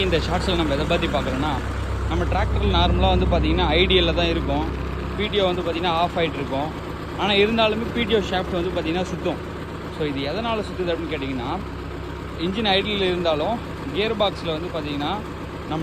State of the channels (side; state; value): both; identical; correlation 1.00